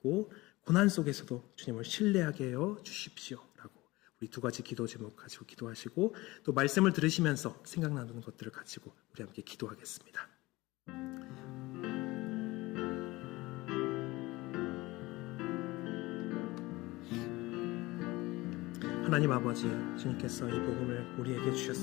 고난 속에서도 주님을 신뢰하게 하여 주십시오라고 우리 두 가지 기도 제목 가지고 기도하시고, 또 말씀을 들으시면서 생각나는 것들을 가지고 우리 함께 기도하겠습니다. 하나님 아버지, 주님께서 이 복음을 우리에게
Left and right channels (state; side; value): quieter; right; 20.6 dB